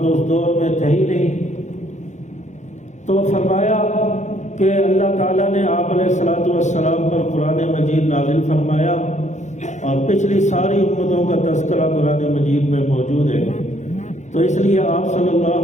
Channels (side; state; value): right; late; 0.34 ms